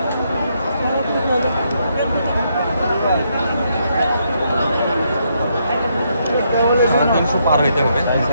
300 পার হইতে হবে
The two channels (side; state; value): both; inverted; correlation -0.76